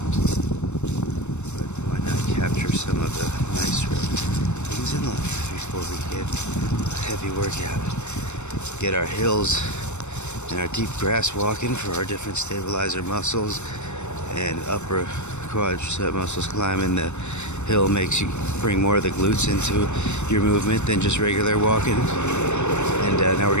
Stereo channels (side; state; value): right; late; 0.83 ms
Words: But why not capture some of the nicer things in life before we get a heavy workout? Get our hills and our deep grass walking for our different stabilizer muscles and upper quadricep muscles. Climbing the hill makes you bring more of the glutes into your movement than just regular walking. And now we're